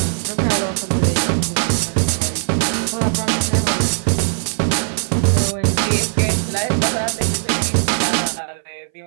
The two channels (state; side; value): silent; left; 62 dB below the other